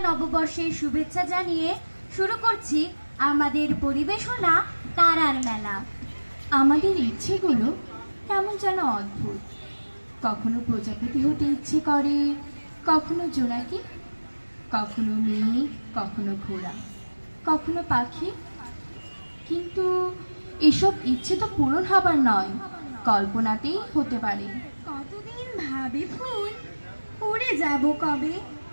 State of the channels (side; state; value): both; inverted; correlation -1.00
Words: নববর্ষের শুভেচ্ছা জানিয়ে শুরু করছি আমাদের পরিবেশনা তারার মেলা। আমাদের ইচ্ছেগুলো কেমন যেন অদ্ভুত। কখনো প্রজাপতি হতে ইচ্ছে করে, কখনো জোনাকি, কখনো মেঘ, কখনো ঘোড়া, কখনো পাখি। কিন্তু এসব ইচ্ছে তো পূরণ হবার নয়, কল্পনাতেই হতে পারে। কতদিন ভাবে ফুল, উড়ে যাব কবে,